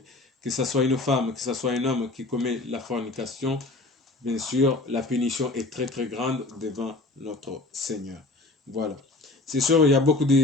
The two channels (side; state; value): right; quieter; 3.1 dB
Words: Que ce soit une femme, que ce soit un homme qui commet la fornication, bien sûr la punition est très très grande devant notre Seigneur. Voilà. C'est sûr, il y a beaucoup